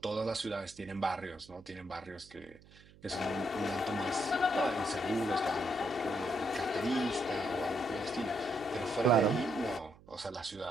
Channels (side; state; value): right; noise; hum, 23 dB below the sound